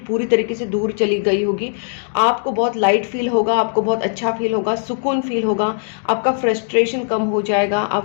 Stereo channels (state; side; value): silent; right; digital silence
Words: पूरी तरीके से दूर चली गई होगी। आपको बहुत लाइट फील होगा, आपको बहुत अच्छा फील होगा, सुकून फील होगा, आपका फ्रस्ट्रेशन कम हो जाएगा,